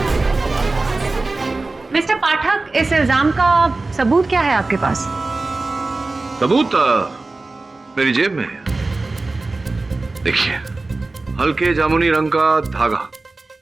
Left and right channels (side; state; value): left; quieter; 3.4 dB